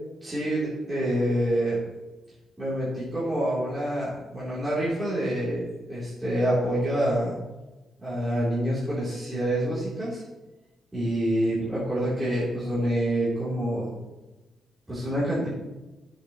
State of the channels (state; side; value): normal; both; correlation 0.82